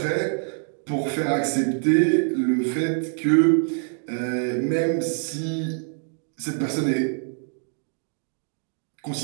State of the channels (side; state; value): left; silent; 56 dB below the other